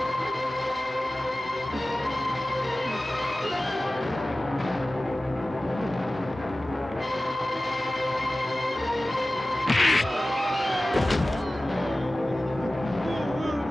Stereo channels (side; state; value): both; normal; correlation 0.96